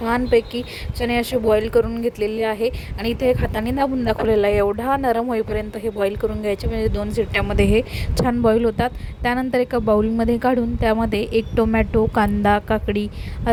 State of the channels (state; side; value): identical; both; correlation 1.00